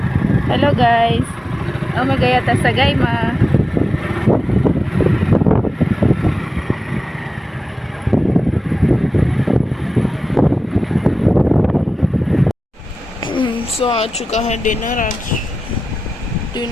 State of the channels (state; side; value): normal; both; correlation 0.94